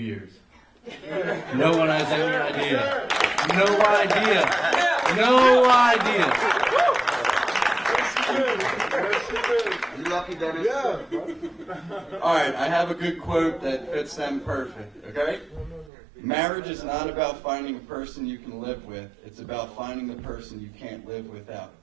No one has any idea. No idea. No idea. You lucky, Dennis? Yeah. All right, I have a good quote that fits them perfect, okay? Marriage is not about finding a person you can live with. It's about finding the person you can't live without.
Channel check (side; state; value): left; drops out; at 15.9 s